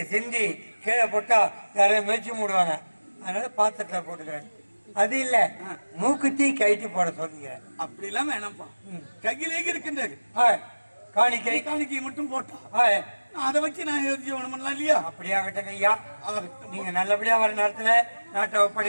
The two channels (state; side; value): inverted; both; correlation -1.00